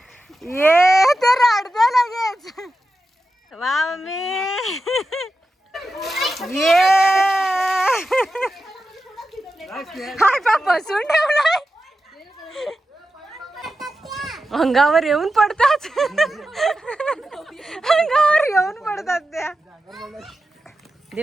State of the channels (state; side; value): normal; both; correlation 0.91